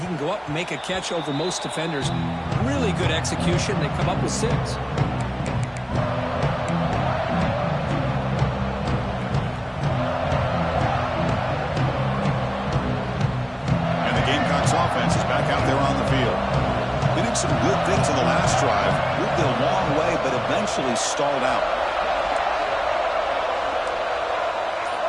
can go up and make a catch over most defenders. Really good execution. They come up with 6. Offense is back out there on the field. They did some good things on the last drive. Moved it a long way, but eventually stalled out.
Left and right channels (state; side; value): identical; both; correlation 1.00